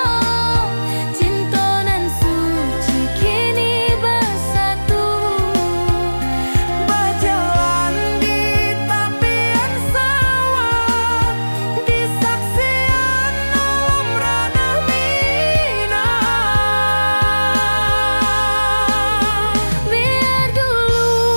Cinta nan suci kini bersatu. Berjalan di tepian sawah, di saksian alam ranah Minang. Biar dulu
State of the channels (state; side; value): inverted; both; correlation -1.00